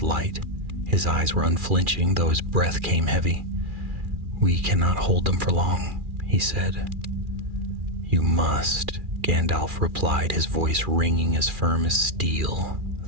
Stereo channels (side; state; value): left; late; 2.4 ms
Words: light. His eyes were unflinching, though his breath came heavy. "We cannot hold them for long," he said. "You must," Gandalf replied, his voice ringing as firm as steel.